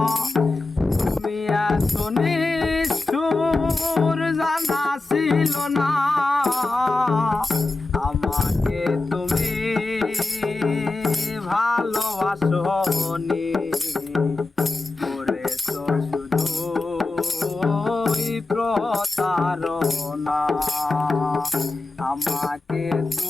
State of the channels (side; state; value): right; quieter; 3.3 dB